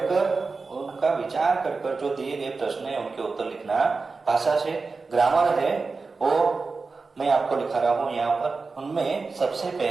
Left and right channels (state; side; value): quieter; left; 4.2 dB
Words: उनका विचार कर कर जो दिए गए प्रश्न है उनके उत्तर लिखना। भाषा से ग्रामर है वो मैं आपको लिखा रहा हूं यहाँ पर। उनमें सबसे